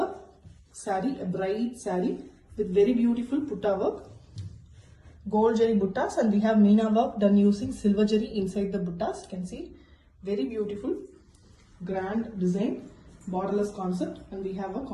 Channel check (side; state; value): both; identical; correlation 1.00